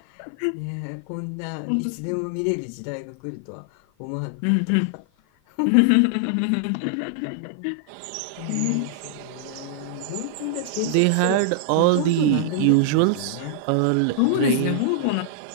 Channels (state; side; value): different; both; correlation -0.01